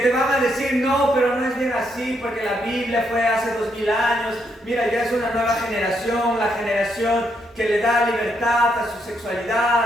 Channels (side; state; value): both; normal; correlation 0.77